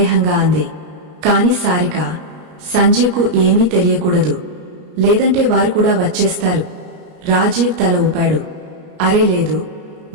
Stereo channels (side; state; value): left; late; 33 ms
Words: అంది. కాని సారిక, సంజీవ్కు ఏమీ తెలియకూడదు. లేదంటే వారు కూడా వచ్చేస్తారు. రాజీవ్ తల ఊపాడు. అరే లేదు,